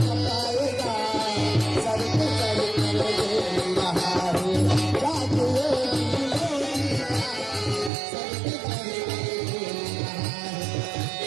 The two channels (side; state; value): left; drops out; at 7.9 s